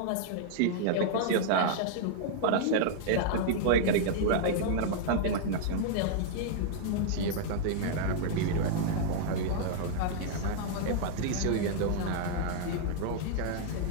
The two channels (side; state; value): both; different; correlation -0.01